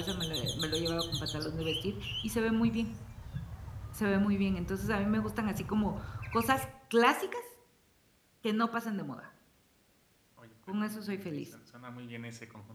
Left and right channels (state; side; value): identical; both; correlation 1.00